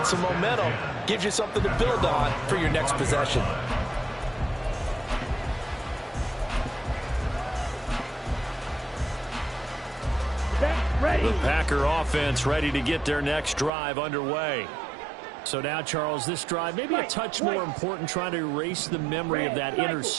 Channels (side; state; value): left; drops out; at 13.7 s